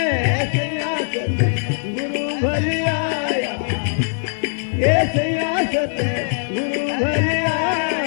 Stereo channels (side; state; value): right; silent; digital silence